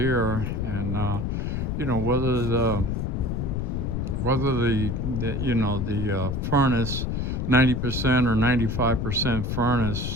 And you know, whether the you know, the furnace, 90% or 95%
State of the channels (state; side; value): noise; left; rumble, 1 dB below the sound